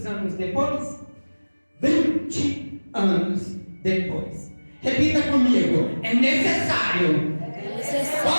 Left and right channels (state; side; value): inverted; both; correlation -1.00